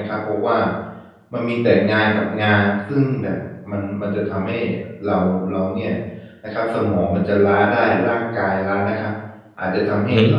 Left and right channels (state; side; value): identical; both; correlation 1.00